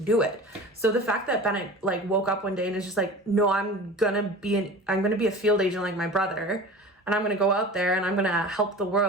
it. So the fact that Bennett like woke up one day and is just like, no, I'm gonna be a field agent like my brother, and I'm gonna go out there and I'm gonna help the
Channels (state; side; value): normal; both; correlation 0.37